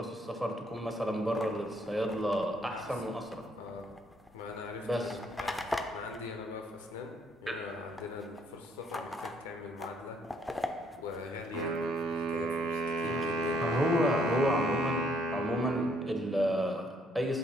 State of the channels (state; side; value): normal; both; correlation 0.67